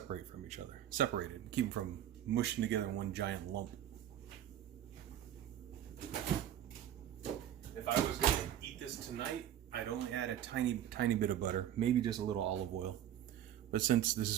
keep them from mushing together in one giant lump. If I was going to eat this tonight, I'd only add a tiny bit of butter, maybe just a little olive oil. But since this is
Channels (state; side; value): quieter; left; 11.0 dB